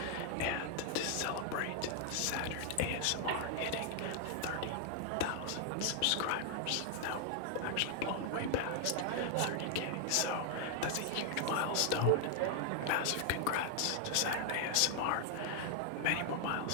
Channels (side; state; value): both; different; correlation 0.00